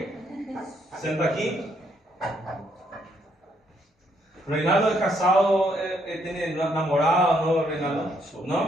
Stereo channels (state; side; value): normal; both; correlation 0.72